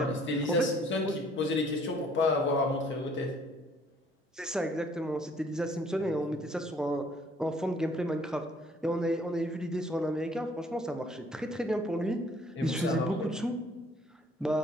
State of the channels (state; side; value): normal; both; correlation 0.60